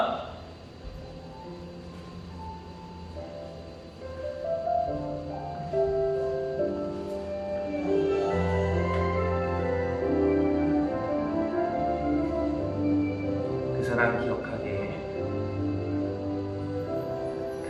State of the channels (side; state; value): both; identical; correlation 1.00